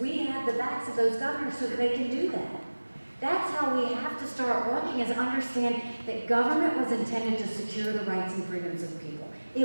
We have the backs of those governors so that they can do that. That's how we have to start working, is understand that government was intended to secure the rights and freedoms of people.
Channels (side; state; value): both; inverted; correlation -1.00